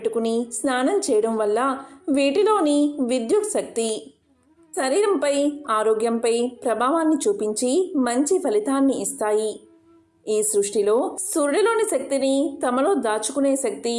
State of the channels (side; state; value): both; identical; correlation 1.00